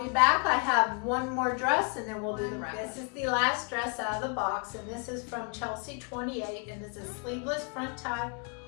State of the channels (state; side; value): quieter; right; 37.0 dB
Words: be back. I have one more dress and then we'll do the wrap. This is the last dress out of the box, and this is from Chelsea 28, and it's a sleeveless front tie